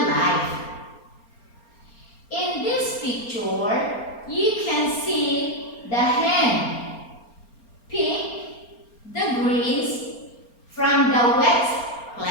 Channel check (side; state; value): right; late; 4.3 ms